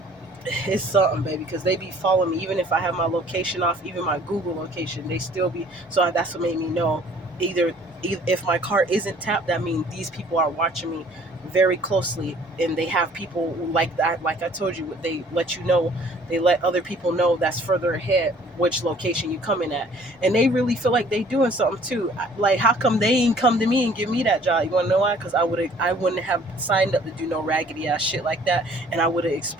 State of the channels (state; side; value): normal; both; correlation 0.55